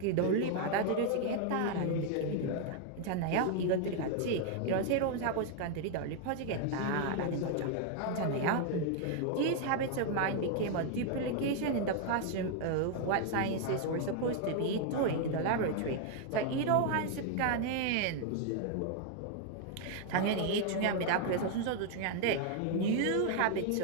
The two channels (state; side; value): different; both; correlation 0.00